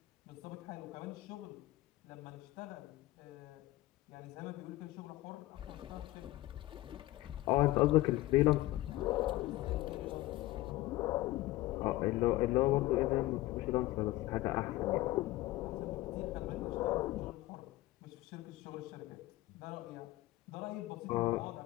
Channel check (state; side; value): quieter; right; 17.4 dB